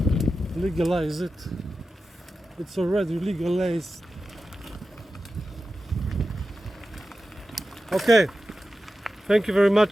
Legalize it. It's already legalized. Okay, thank you very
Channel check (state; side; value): normal; both; correlation 0.93